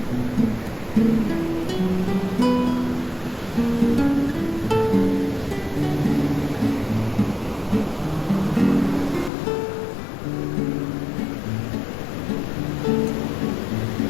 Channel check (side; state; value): right; drops out; at 9.3 s